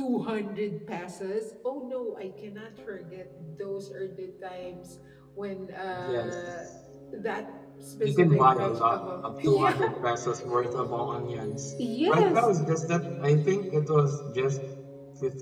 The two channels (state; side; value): identical; both; correlation 1.00